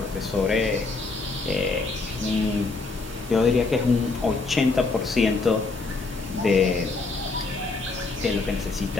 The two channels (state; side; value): quieter; right; 3.8 dB